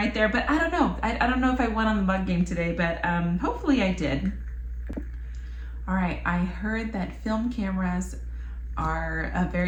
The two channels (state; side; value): identical; both; correlation 1.00